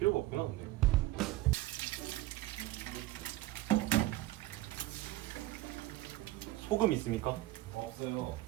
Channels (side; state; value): left; quieter; 16.7 dB